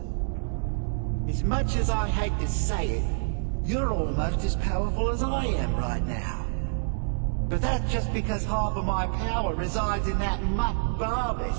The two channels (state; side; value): silent; left; digital silence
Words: As much as I hate to say it, you're almost as powerful as I am right now. But that's just because half of my power resides in that mutt